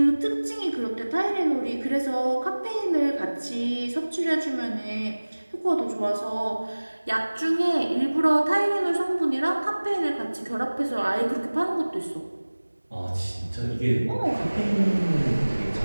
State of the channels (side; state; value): both; inverted; correlation -1.00